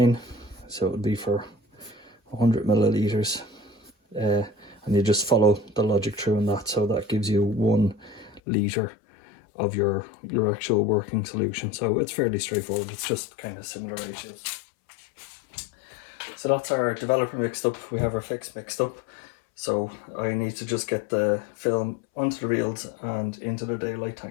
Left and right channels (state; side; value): drops out; right; at 8.4 s